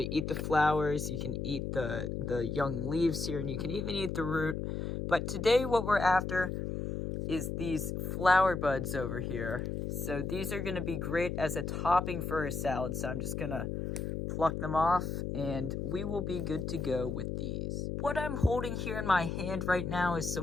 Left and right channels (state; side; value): noise; left; hum, 3 dB below the sound